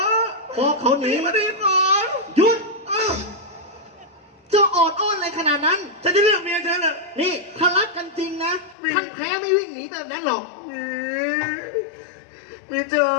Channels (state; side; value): drops out; right; at 8.8 s